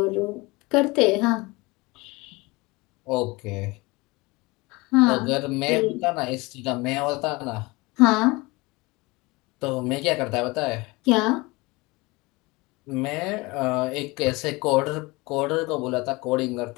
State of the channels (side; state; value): right; quieter; 23.8 dB